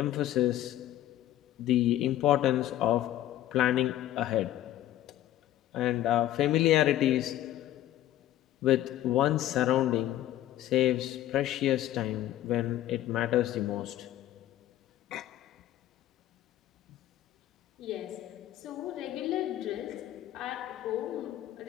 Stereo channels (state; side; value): quieter; right; 13.3 dB